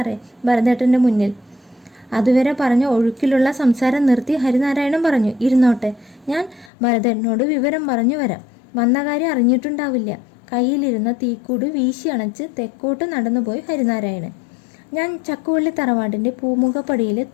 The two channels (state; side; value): drops out; right; at 6.7 s